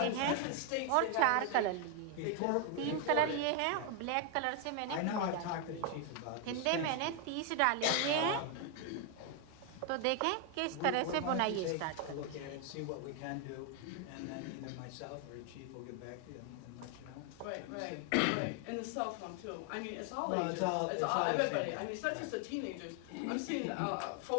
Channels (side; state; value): both; different; correlation 0.01